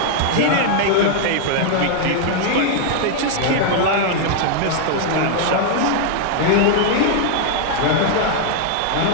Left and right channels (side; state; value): both; different; correlation 0.00